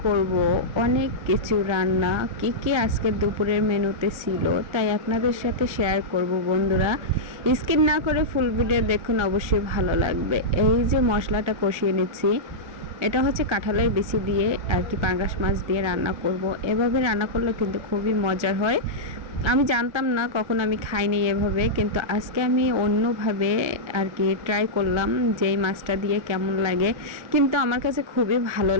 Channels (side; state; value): left; late; 1.3 ms